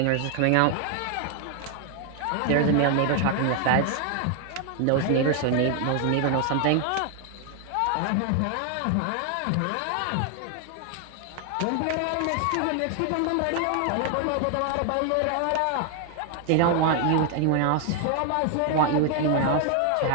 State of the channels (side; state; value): both; different; correlation 0.00